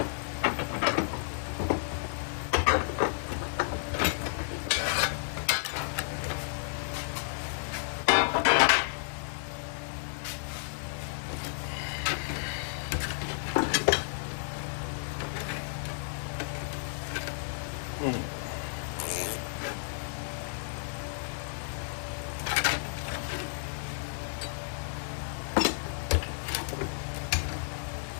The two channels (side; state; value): right; silent; digital silence